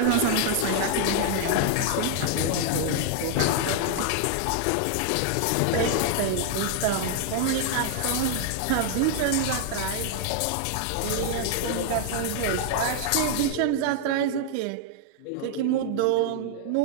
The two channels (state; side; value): different; both; correlation 0.00